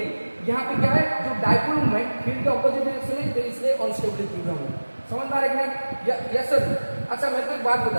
यहाँ पे क्या है, जो डायपोल मूवमेंट फील्ड के ऑपोजिट डायरेक्शन में, तो इसलिए अनस्टेबल इक्विलिब्रियम है। समझ में आ रहा है कि नहीं? Yes sir. अच्छा मैं तो एक बात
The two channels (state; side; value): inverted; both; correlation -1.00